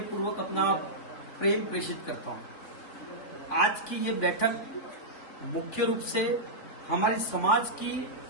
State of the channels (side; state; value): right; late; 3.4 ms